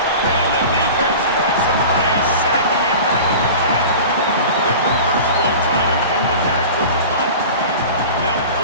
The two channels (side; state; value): both; inverted; correlation -0.36